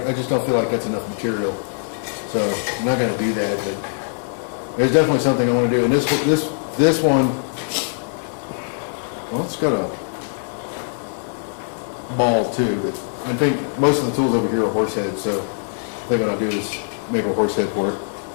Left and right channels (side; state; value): right; silent; 64 dB below the other